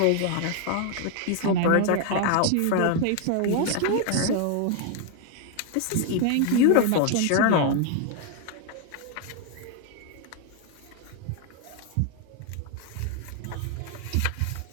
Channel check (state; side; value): different; both; correlation 0.00